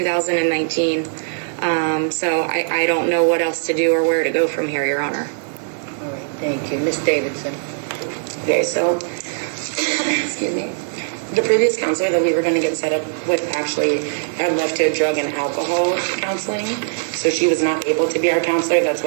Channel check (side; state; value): left; silent; digital silence